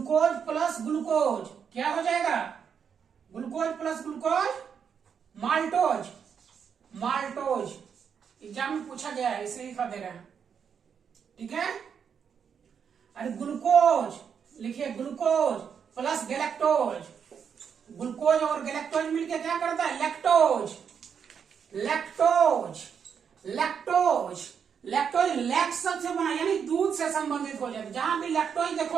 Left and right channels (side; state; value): left; quieter; 7.1 dB